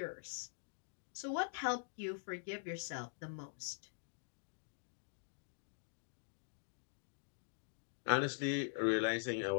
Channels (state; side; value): silent; right; digital silence